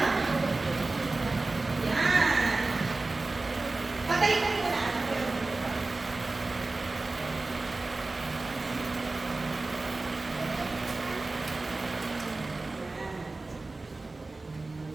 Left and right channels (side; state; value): left; quieter; 3.3 dB